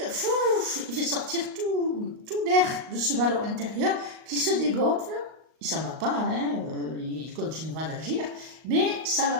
il fait sortir tout l'air de ce ballon intérieur qui se dégonfle. Il s'en va pas, hein, il continuera d'agir, mais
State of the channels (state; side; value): late; left; 38 ms